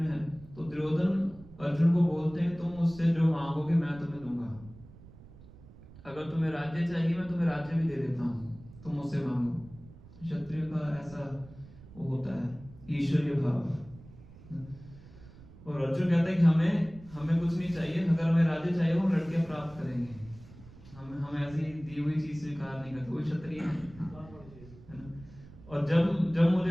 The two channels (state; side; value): noise; right; rumble, 20 dB below the sound